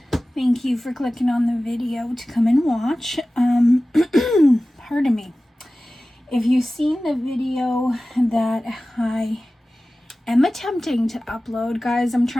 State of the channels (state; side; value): normal; both; correlation 0.96